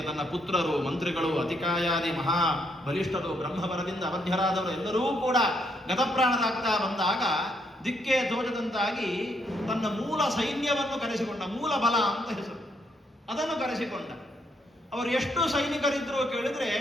ತನ್ನ ಪುತ್ರರು, ಮಂತ್ರಿಗಳು, ಅತಿಕಾಯಾದಿ ಮಹಾ ಬಲಿಷ್ಠರು, ಬ್ರಹ್ಮವರದಿಂದ ಅವಧ್ಯರಾದವರು ಎಲ್ಲರೂ ಕೂಡ ಗತಪ್ರಾಣರಾಗ್ತಾ ಬಂದಾಗ ದಿಕ್ಕೇ ತೋಚದಂತಾಗಿ ತನ್ನ ಮೂಲ ಸೈನ್ಯವನ್ನು ಕರೆಸಿಕೊಂಡ, ಮೂಲ ಬಲ ಅಂತ ಹೆಸರು, ಅದನ್ನು ಕರೆಸಿಕೊಂಡ. ಅವರು ಎಷ್ಟು ಸೈನಿಕರಿದ್ರು ಕೇಳಿದ್ರೆ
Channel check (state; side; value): normal; both; correlation 0.74